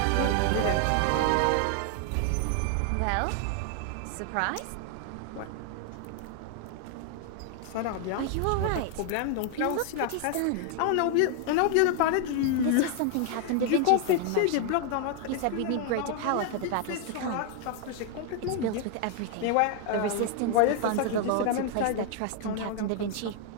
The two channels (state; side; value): different; both; correlation 0.00